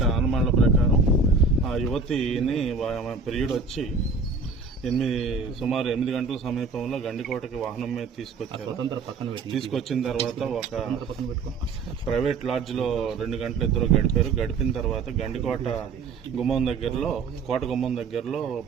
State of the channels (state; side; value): quieter; left; 4.5 dB